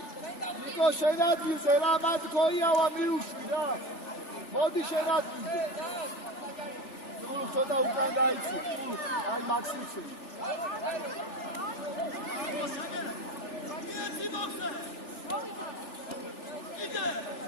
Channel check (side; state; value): right; late; 3.4 ms